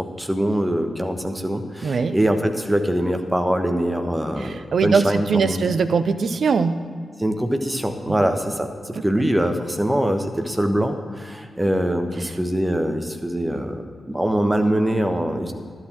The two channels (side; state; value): both; normal; correlation 0.93